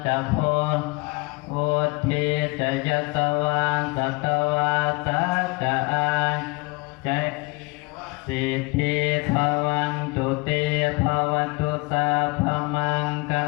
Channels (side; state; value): right; quieter; 27.0 dB